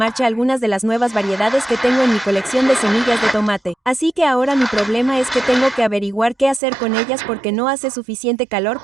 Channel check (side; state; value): left; drops out; at 6.6 s